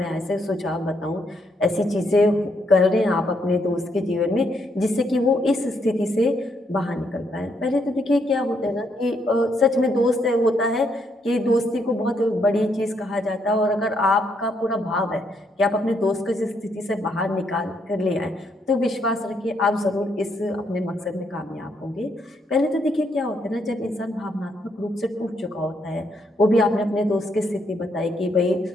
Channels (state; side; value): normal; both; correlation 0.75